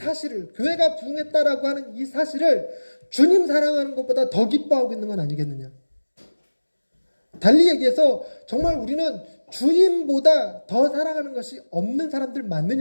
교회가 부흥했다라고 하는 이 사실을 주님 사랑하는 것보다 더 기뻐하고 있는 건 아니겠느냐. 달리 얘기해서 정말 우리는 주님보다 더 사랑하는 것이 없는 사람들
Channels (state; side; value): inverted; both; correlation -1.00